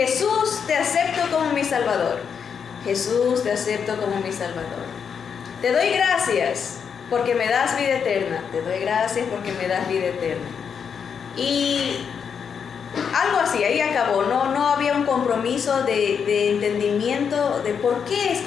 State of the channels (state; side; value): quieter; right; 6.9 dB